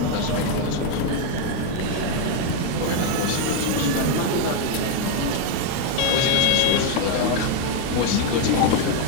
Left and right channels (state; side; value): different; both; correlation 0.01